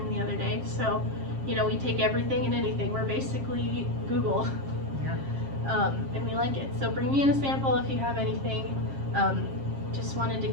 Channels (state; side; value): late; left; 7.4 ms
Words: the other day. So, we take everything and anything. We're basically Google. And we like it. So bring me in a sample if you have anything. Just wanted to